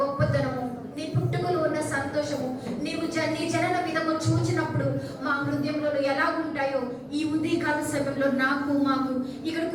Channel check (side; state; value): both; identical; correlation 1.00